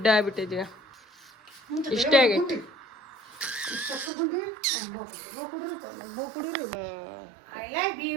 ಆಗ್ಬಿಟ್ಟಿದ್ದೀಗ. ಇಷ್ಟೇ ಆಗೈತಿ.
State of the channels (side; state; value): left; drops out; at 4.1 s